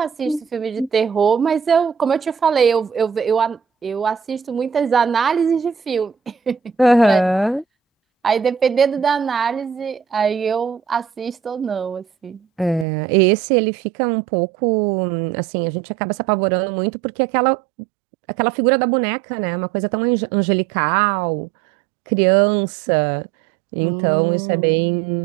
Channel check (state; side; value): drops out; left; at 12.9 s